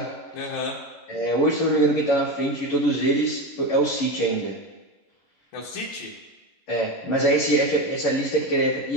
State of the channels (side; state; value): right; late; 11 ms